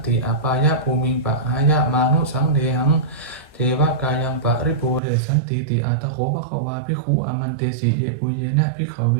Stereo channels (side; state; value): left; drops out; at 5.0 s